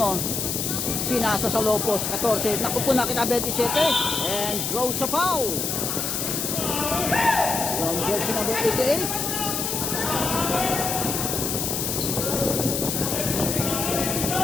Pinasa sa Lopos, 14. Naku po, nakita 27. And draws a foul. From jersey number 88.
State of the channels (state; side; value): noise; left; hiss, 1 dB below the sound